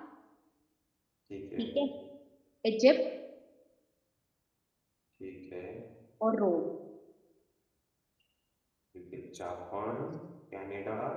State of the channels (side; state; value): both; identical; correlation 1.00